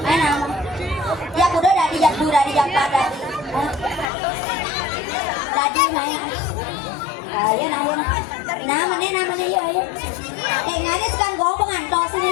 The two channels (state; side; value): drops out; right; at 4.1 s